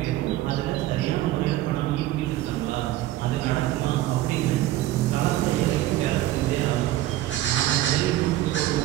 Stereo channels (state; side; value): quieter; left; 14.9 dB